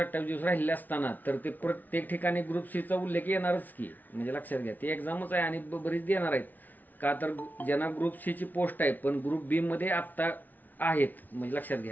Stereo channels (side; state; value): right; late; 0.082 ms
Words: दिवस राहिले असताना तर ते प्रत्येक ठिकाणी ग्रुप सीचा उल्लेख येणारच की, म्हणजे लक्षात घ्या ती एक्झामच आहे आणि बरीच देणार आहेत. का तर ज्यांना ग्रुप सीची पोस्ट आहे पण ग्रुप बी मध्ये आत्ता आहेत, म्हणजे लक्षात